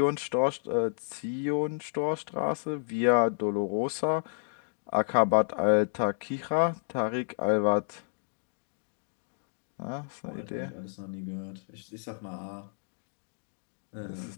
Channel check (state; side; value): silent; right; digital silence